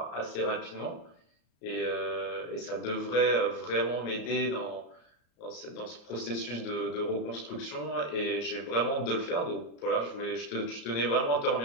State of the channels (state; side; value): late; right; 34 ms